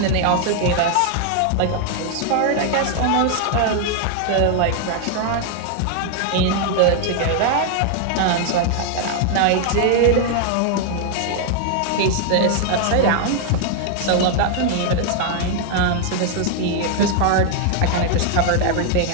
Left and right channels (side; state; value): both; different; correlation 0.00